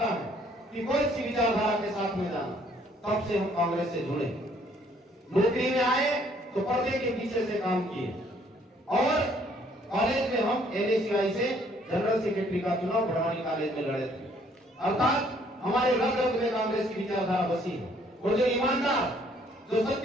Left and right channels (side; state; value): both; normal; correlation 0.63